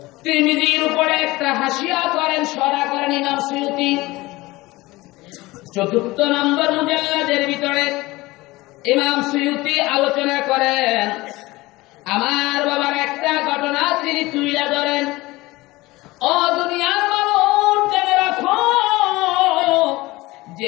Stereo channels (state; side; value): quieter; right; 20.3 dB